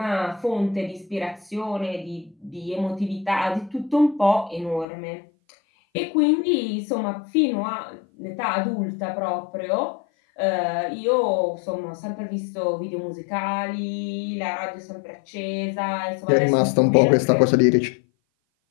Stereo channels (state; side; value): drops out; right; at 4.9 s